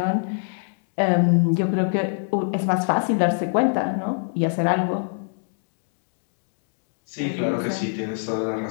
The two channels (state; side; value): silent; right; digital silence